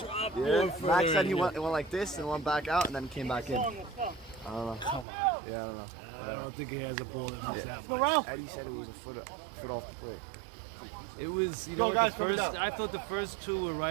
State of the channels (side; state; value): left; drops out; at 5.1 s